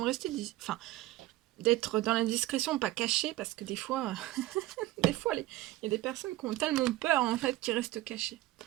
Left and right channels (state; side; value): quieter; left; 16.7 dB